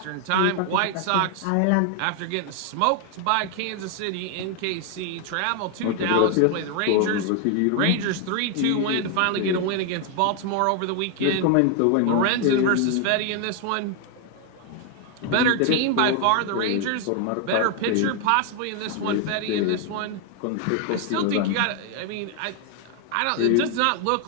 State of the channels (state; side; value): different; both; correlation 0.00